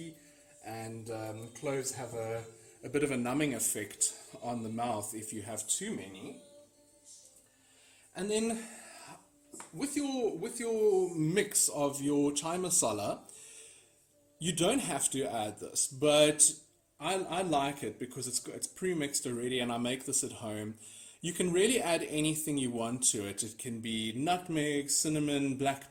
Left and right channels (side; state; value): both; identical; correlation 1.00